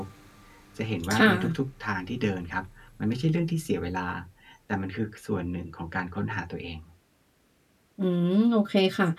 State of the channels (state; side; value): identical; both; correlation 1.00